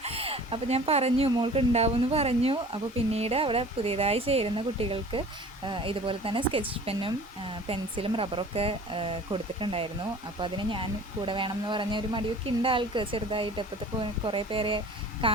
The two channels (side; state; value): both; normal; correlation 0.45